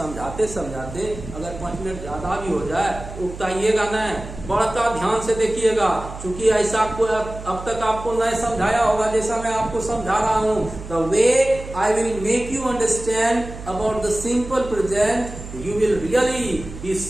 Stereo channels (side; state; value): right; noise; hum, 12 dB below the sound